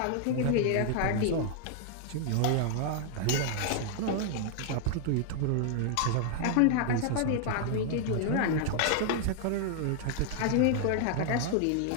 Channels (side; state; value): both; different; correlation 0.00